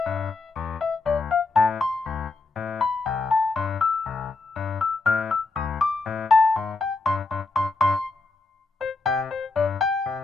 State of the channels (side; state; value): right; quieter; 3.7 dB